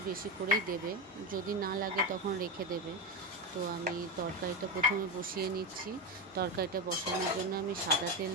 বেশি করেই দেবে, যদি না লাগে তখন রেখে দেবে। তো আমি তরকারিটা প্রথমে বসিয়ে নিচ্ছি। তরকারিটা বসানোর জন্য আমি সাদা তেল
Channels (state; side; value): normal; both; correlation 0.14